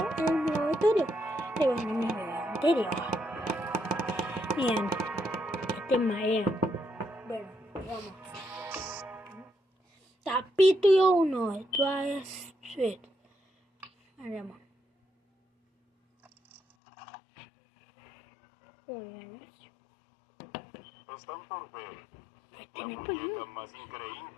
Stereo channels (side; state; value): right; drops out; at 16.6 s